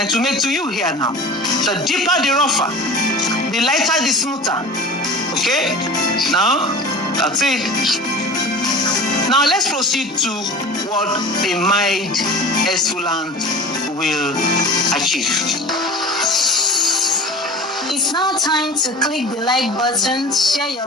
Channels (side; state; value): both; normal; correlation 0.37